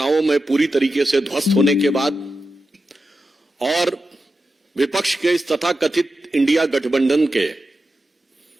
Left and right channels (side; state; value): both; normal; correlation 0.91